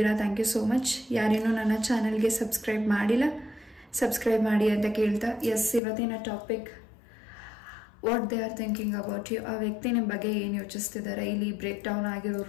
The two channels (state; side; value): drops out; right; at 5.8 s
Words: ಥ್ಯಾಂಕ್ ಯು ಸೋ ಮಚ್. ಯಾರೇನೂ ನನ್ನ ಚಾನೆಲ್ಗೆ ಸಬ್ಸ್ಕ್ರೈಬ್ ಮಾಡಿಲ್ಲ ಸಬ್ಸ್ಕ್ರೈಬ್ ಮಾಡಿ ಅಂತ ಕೇಳ್ತಾ, ಎಸ್, ಇವತ್ತಿನ topic what they are thinking about you. ಆ ವ್ಯಕ್ತಿ ನಿಮ್ಮ ಬಗ್ಗೆ ಏನು ಯೋಚಿಸ್ತಿದ್ದಾರೆ. ಇಲ್ಲಿ ಬ್ರೇಕ್ ಡೌನ್